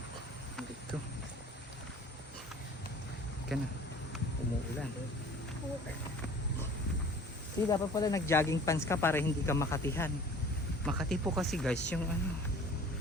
Dito. Ika na. Umuulan. See, dapat pala nag-jogging pants ka para hindi ka makatihan. Makati po kasi guys yung ano.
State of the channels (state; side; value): normal; both; correlation 0.47